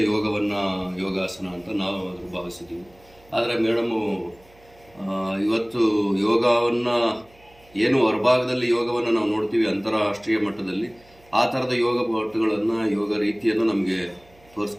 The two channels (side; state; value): right; noise; hum, 28 dB below the sound